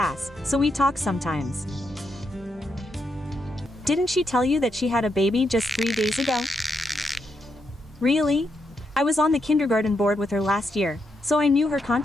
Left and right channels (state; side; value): normal; both; correlation 0.81